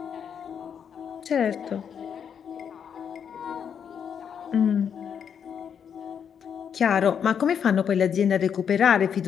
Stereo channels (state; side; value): quieter; right; 7.7 dB